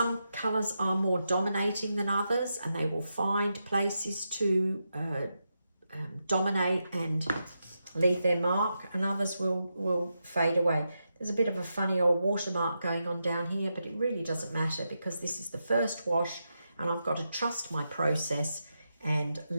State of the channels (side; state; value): both; inverted; correlation -0.86